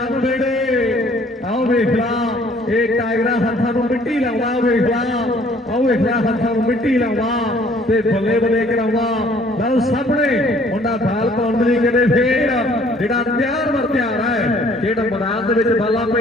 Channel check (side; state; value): both; normal; correlation 0.58